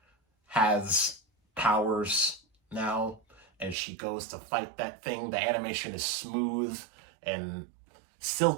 has powers now, and she goes to fight that thing. The animation is smooth and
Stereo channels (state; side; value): drops out; left; at 3.8 s